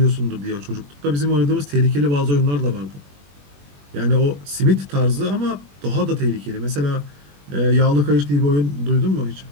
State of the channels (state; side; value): late; left; 21 ms